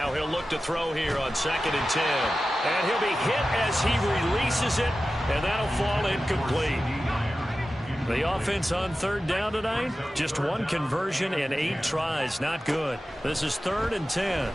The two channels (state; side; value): normal; both; correlation 0.94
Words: he'll look to throw here on 2nd and 10. And he'll be hit as he releases it, and that'll fall incomplete. The offense on 3rd down tonight, just 1 conversion and 8 tries. Not good. This is 3rd and 10.